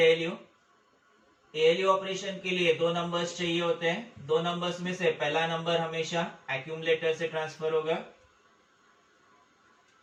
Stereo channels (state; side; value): identical; both; correlation 1.00